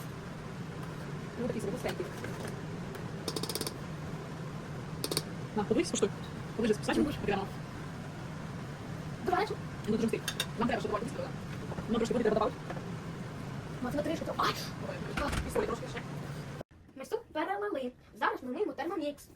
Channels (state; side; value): identical; both; correlation 1.00